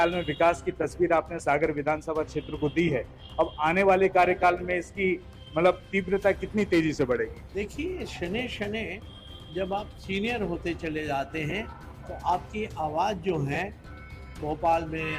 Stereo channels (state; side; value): identical; both; correlation 1.00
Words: में विकास की तस्वीर आपने सागर विधानसभा क्षेत्र को दी है, अब आने वाले कार्यकाल में इसकी मतलब तीव्रता कितनी तेजी से बढ़ेगी? देखिए, शने शने जब आप सीनियर होते चले जाते हैं तो आपकी आवाज़ जो है भोपाल में